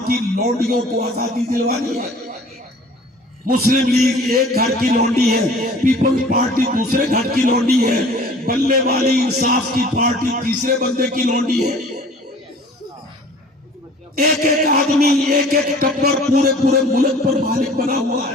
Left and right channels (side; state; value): both; normal; correlation 0.48